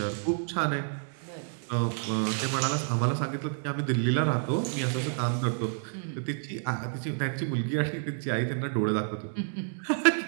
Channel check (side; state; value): left; silent; digital silence